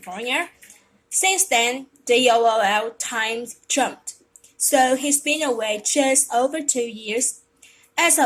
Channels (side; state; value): both; identical; correlation 1.00